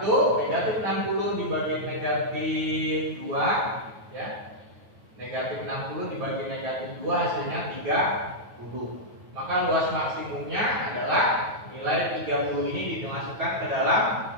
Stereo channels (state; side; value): late; left; 9.3 ms